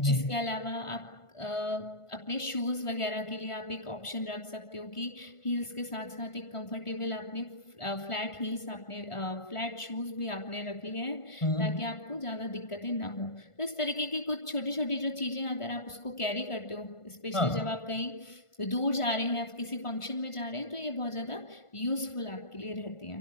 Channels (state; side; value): late; right; 1.5 ms